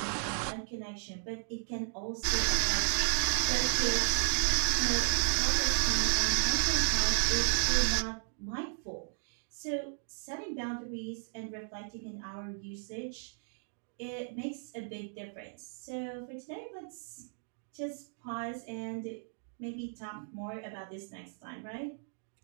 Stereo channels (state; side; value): silent; left; digital silence